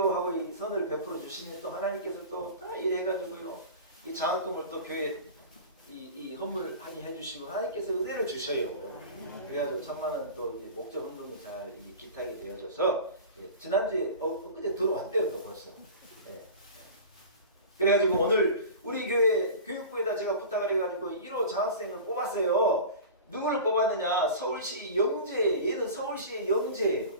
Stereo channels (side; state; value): both; inverted; correlation -0.35